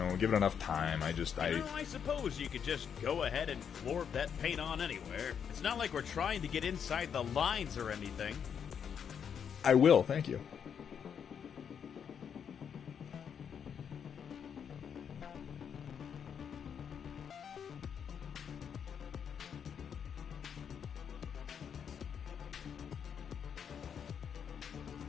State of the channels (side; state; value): right; quieter; 7.6 dB